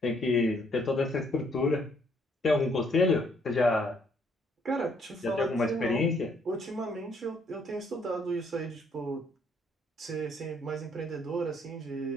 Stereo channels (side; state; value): both; normal; correlation 0.68